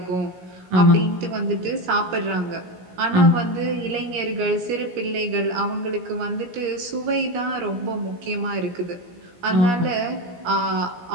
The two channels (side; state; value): left; late; 17 ms